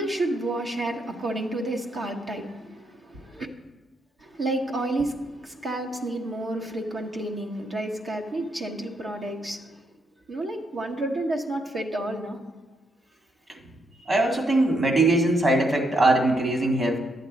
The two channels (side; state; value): both; normal; correlation 0.77